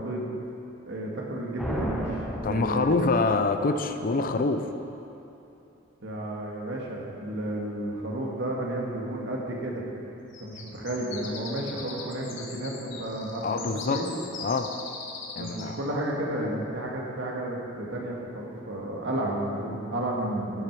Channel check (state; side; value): normal; both; correlation 0.27